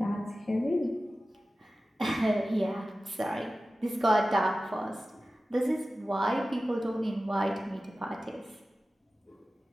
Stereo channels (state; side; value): normal; both; correlation 0.95